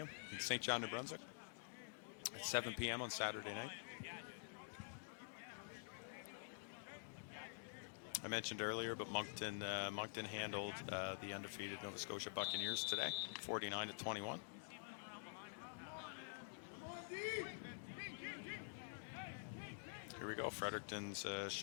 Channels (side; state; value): right; silent; digital silence